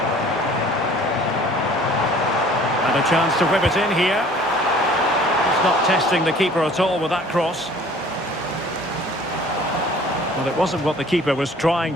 And a chance to whip it in here. He's not testing the keeper at all with that cross. Well, it wasn't what the keeper was trying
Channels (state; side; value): normal; both; correlation 0.51